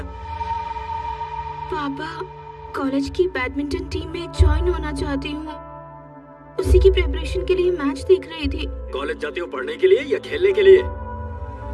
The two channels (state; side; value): identical; both; correlation 1.00